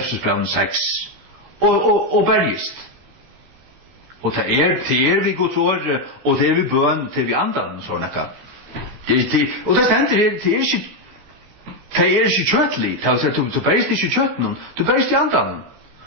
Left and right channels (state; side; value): late; left; 15 ms